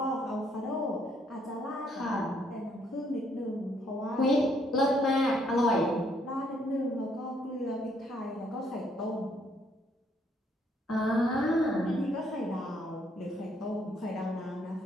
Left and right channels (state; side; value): normal; both; correlation 0.69